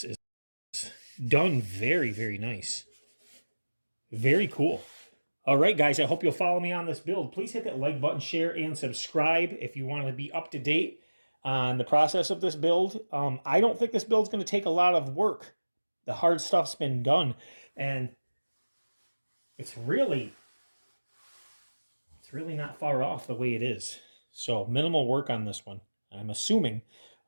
is done very nice. Very cool. All right, guys, I hope you'll follow me on this build. Please hit that like button, share, and subscribe if you want to be up to date on the process of this build. I don't think this build's going to take a lot of work. The hard stuff's been done, and it's really not far off the way it is. So minimal work on this one. I'm assuming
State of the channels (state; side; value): inverted; both; correlation -1.00